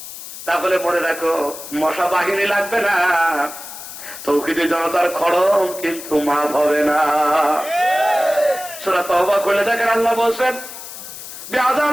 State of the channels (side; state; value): left; noise; hiss, 12 dB below the sound